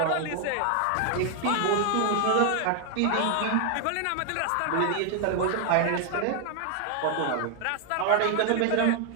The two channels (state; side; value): different; both; correlation 0.00